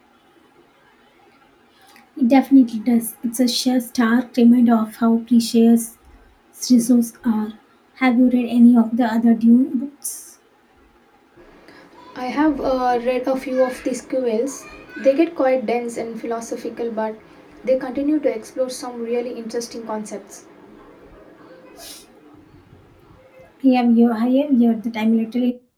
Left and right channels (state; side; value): identical; both; correlation 1.00